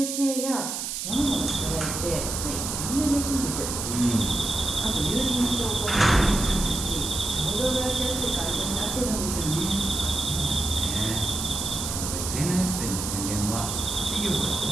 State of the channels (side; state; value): right; noise; hiss, 4 dB below the sound